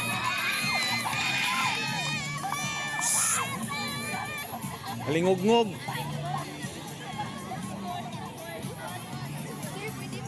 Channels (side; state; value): both; identical; correlation 1.00